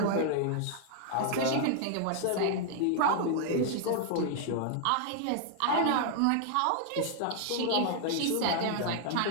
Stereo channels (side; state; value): both; different; correlation 0.00